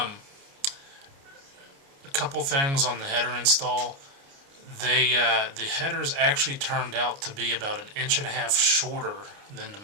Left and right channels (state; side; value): late; left; 29 ms